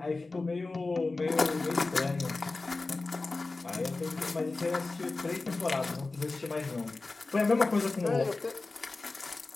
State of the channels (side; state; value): right; quieter; 3.5 dB